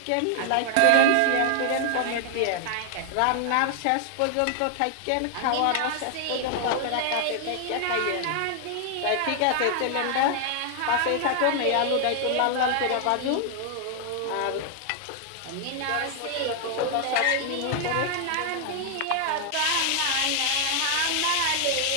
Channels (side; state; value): both; different; correlation 0.00